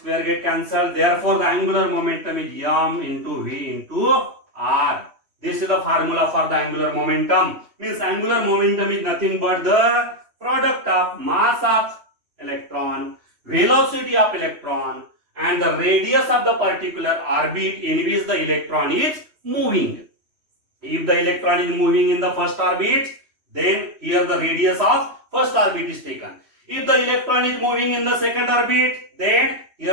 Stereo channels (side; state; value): left; late; 3.1 ms